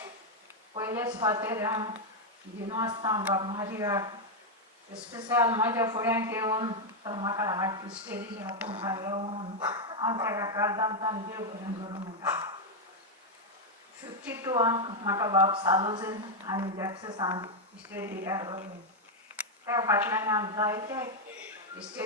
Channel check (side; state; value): both; normal; correlation 0.01